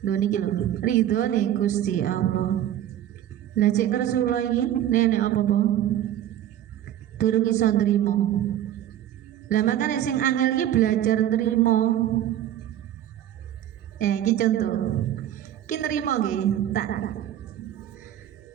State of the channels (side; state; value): left; quieter; 11.7 dB